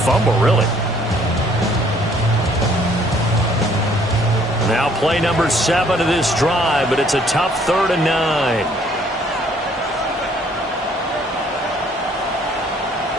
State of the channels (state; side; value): normal; both; correlation 0.61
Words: really. Now play number 7 of this drive, but it's a tough 3rd and 9.